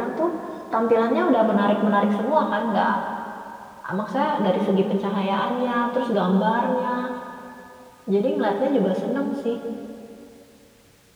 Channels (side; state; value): both; identical; correlation 1.00